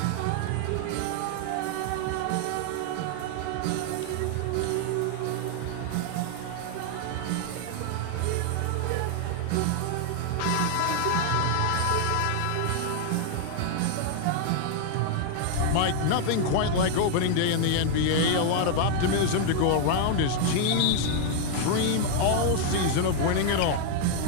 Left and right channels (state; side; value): different; both; correlation 0.00